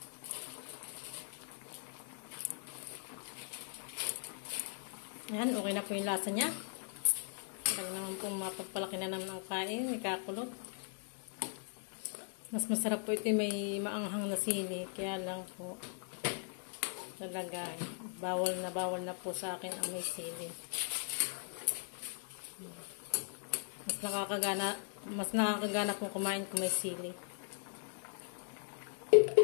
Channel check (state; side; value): silent; right; 52 dB below the other